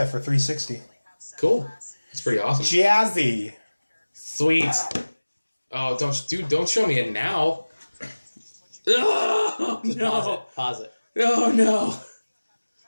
for 360. Cool. That's pretty awesome. Jazzy. Sweet. Oh, don't show me it now. Oh, no. Pause it. Oh, no.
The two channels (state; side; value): inverted; both; correlation -1.00